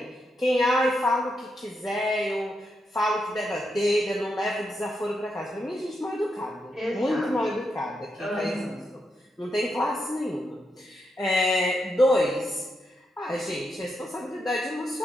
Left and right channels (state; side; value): normal; both; correlation 0.83